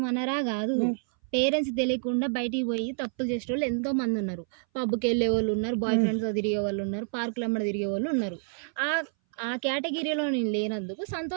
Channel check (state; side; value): silent; left; 59 dB below the other